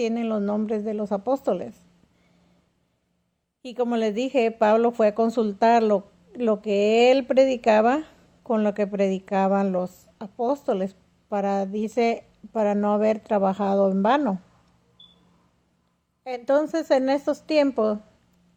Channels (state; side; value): identical; both; correlation 1.00